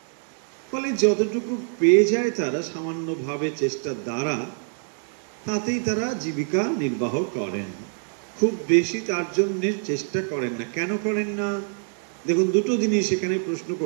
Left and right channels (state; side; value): silent; left; 62 dB below the other